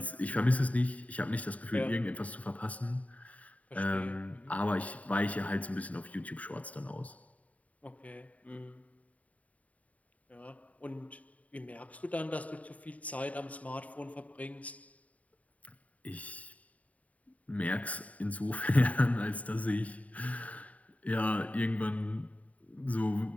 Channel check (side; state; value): right; late; 0.069 ms